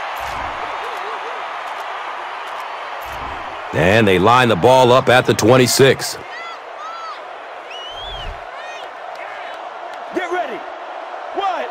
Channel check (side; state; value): both; identical; correlation 1.00